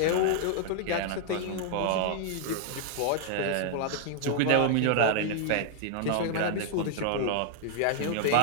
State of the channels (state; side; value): different; both; correlation 0.00